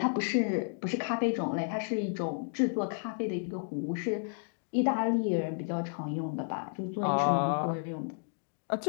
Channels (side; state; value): right; silent; digital silence